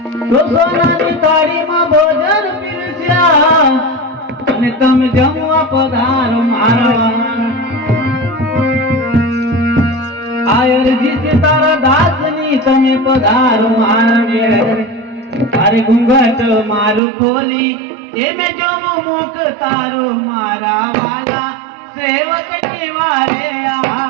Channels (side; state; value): left; drops out; at 17.0 s